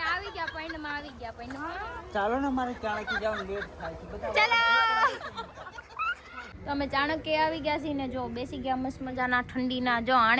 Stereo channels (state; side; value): identical; both; correlation 1.00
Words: આવી ગયા પૈંડમાં આવી ગયા પૈંડમાં. ચાલો ને મારે ચાણકી જવાનું લેટ થાય છે બધા ચલો તો અમે ચાણક્ય આવી ગયા છીએ ને જો બેસી ગયા મસ્ત મજાના ઠંડીના. જો